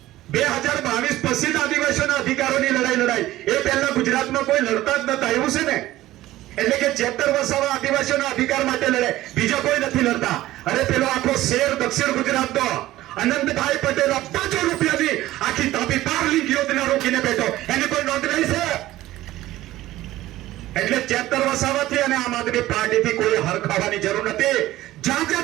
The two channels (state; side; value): quieter; left; 15.8 dB